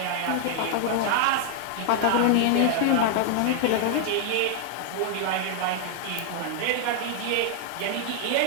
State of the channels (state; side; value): different; both; correlation -0.01